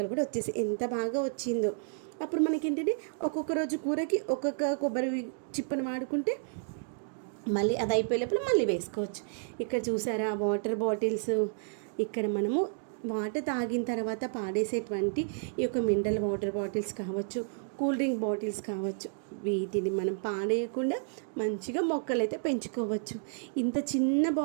కూడా వచ్చేసి ఎంత బాగా వచ్చిందో. అప్పుడు మనకి ఏంటంటే ఒక్కొక్క రోజు కూరకి ఒక్కొక్క కొబ్బరి చిప్పను వాడుకుంటే మళ్ళీ అది అయిపోయేటప్పుడు మళ్ళీ వేసుకోవచ్చు. ఇక్కడ చూసారా వాటర్ బాటిల్స్, ఇక్కడ మనము వాటర్ తాగిన తర్వాత పాడేసేటువంటి ఈ యొక్క మినరల్ వాటర్ బాటిల్స్ కావచ్చు, కూల్ డ్రింక్ బాటిల్స్ కావచ్చు, వీటిని మనం పాడేయకుండా మంచిగా మొక్కలు అయితే పెంచుకోవచ్చు. ఇంత చిన్న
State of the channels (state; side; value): silent; left; digital silence